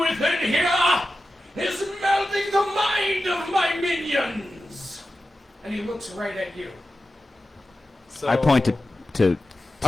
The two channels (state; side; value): normal; both; correlation 0.93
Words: within here is melting the mind of my minions? And he looks right at you. So, I point to